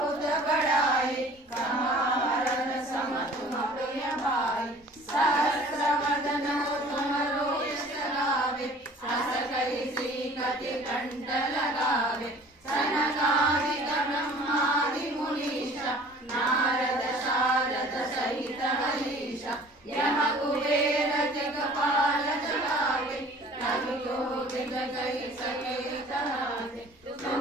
बड़ाए कहारन सम तुम प्रिय भाई सहस्र वदन तुमरो यश गावे अस कहि श्रीपति कंठ लगावे सनकादिक ब्रह्मादि मुनीषा नारद शारद सहित हरीशा यम कुबेर जगपाल जगावे रघुयोगी जगहि सके तरावे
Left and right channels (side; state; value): both; normal; correlation 0.48